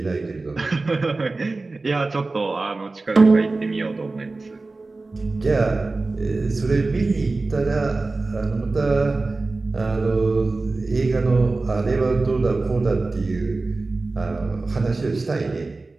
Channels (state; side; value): quieter; left; 3.4 dB